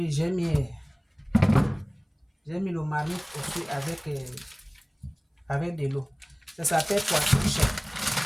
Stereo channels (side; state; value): both; identical; correlation 1.00